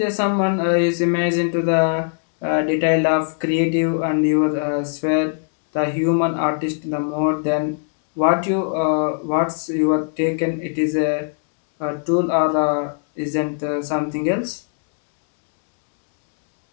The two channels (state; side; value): silent; right; digital silence